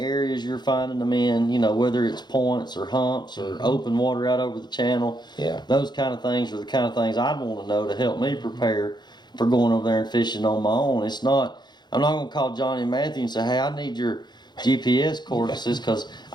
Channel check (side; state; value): right; late; 0.21 ms